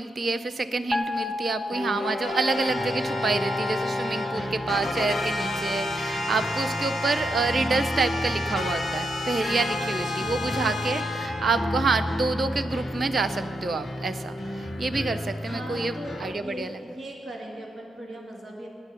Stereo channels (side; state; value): both; normal; correlation 0.83